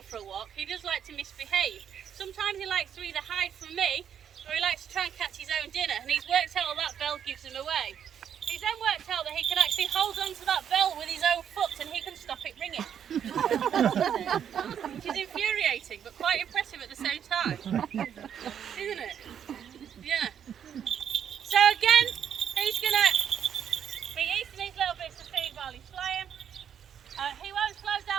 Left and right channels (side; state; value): left; quieter; 8.7 dB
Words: for a walk, he does like to misbehave. Sometimes he likes to either hide from me or he likes to try and catch his own dinner, and he's worked out that bell gives him away. He's then worked out that he can actually hold on to that bell with his own foot and he can stop it ringing. Which is infuriating but quite impressive at the same time. Isn't it? Yeah. So again, he's going to be eating these little bits of food while he's flying. He won't slow